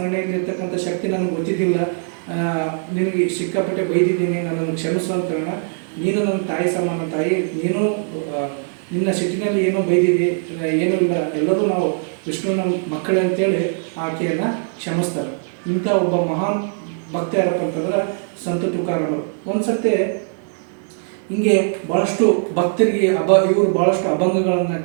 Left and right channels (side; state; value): left; silent; digital silence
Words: ಶಕ್ತಿ ನನಗೆ ಗೊತ್ತಿದ್ದಿಲ್ಲ, ನಿನಗೆ ಸಿಕ್ಕಾಪಟ್ಟೆ ಬೈದಿದ್ದೀನಿ, ನನ್ನನ್ನು ಕ್ಷಮಿಸು ಅಂತ ಹೇಳೋಣ. ನೀನು ನನ್ನ ತಾಯಿ ಸಮಾನ ತಾಯಿ, ನೀನು ನಿನ್ನ ಸಿಟ್ಟಿನಲ್ಲಿ ಏನೋ ಬೈದಿದ್ದಿ, ಏನೂ ಇಲ್ಲ, ಎಲ್ಲರೂ ನಾವು ವಿಷ್ಣುವಿನ ಮಕ್ಕಳೇ ಅಂತೇಳಿ ಆಕೆಯನ್ನು ಕ್ಷಮಿಸ್ತಾರೆ. ಇಂಥ ಒಬ್ಬ ಮಹಾನ್ ಭಕ್ತ ಯಾರಪ್ಪ ಅಂತಂದ್ರೆ ಸಂತ ತುಕಾರಾಮರು. ಒಂದು ಸರ್ತಿ ಹಿಂಗೆ ಭಾಳಷ್ಟು ಭಕ್ತರಿಗೆ ಇವರು ಭಾಳಷ್ಟು ಅಭಂಗಗಳನ್ನು